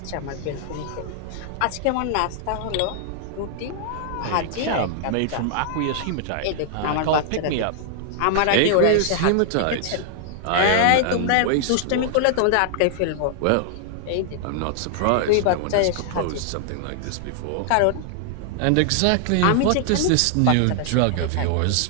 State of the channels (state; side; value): different; both; correlation 0.00